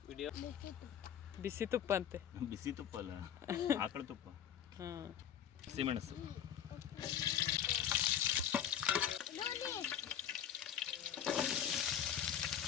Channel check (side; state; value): right; quieter; 9.6 dB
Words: video ಬಿಸಿ ತುಪ್ಪ ಅಂತೆ. ಬಿಸಿ ತುಪ್ಪ ಅಲ್ಲ, ಆಕಳ ತುಪ್ಪ, ಹಾಂ, ಹಸಿಮೆಣಸು,